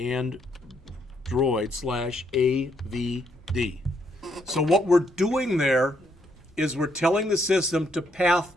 Droid/AVD. So what we're doing there is we're telling the system to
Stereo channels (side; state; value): both; normal; correlation 0.73